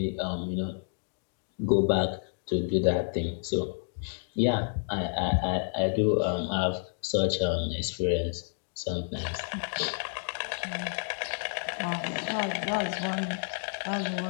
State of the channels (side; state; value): right; silent; digital silence